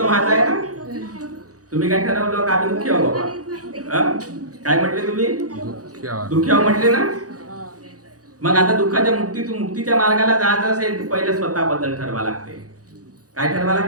आहे ना. तुम्ही काय ठरवलं का आम्ही दुःखी आहो बाबा? काय म्हटले तुम्ही? दुःखी आहो म्हटले ना. मग आता दुःखाच्या मुक्तीच्या मार्गाला जायचं असेल तर पहिले स्वतःबद्दल ठरवा लागते. काय ठरवा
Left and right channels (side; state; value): left; late; 0.67 ms